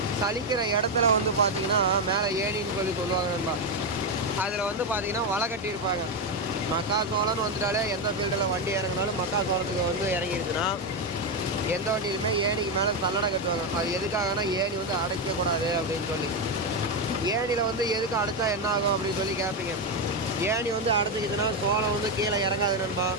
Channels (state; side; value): normal; both; correlation 0.07